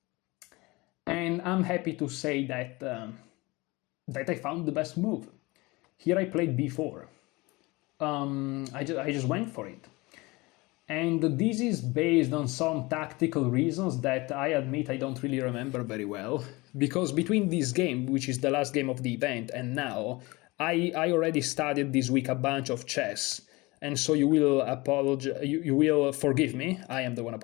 And I'm happy to say that, that I found the best move. Here I played b4. I just went for it. And this is based on some tactical reasons that I admit I don't really remember very well. Because between this game, which is the last game of the event, and now, I already studied this week a bunch of chess. And so you will you will forgive me. I am the one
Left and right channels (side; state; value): right; quieter; 23.2 dB